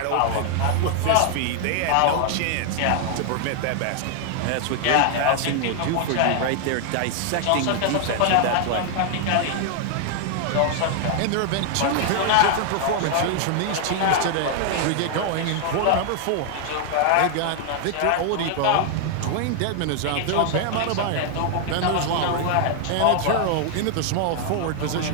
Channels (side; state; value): both; different; correlation 0.00